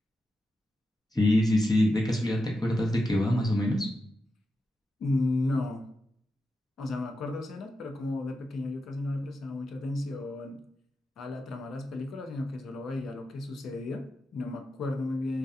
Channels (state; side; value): normal; both; correlation 0.89